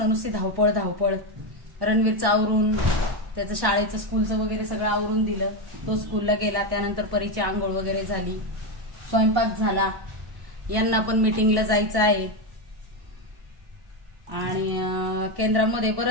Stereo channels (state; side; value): late; left; 1.1 ms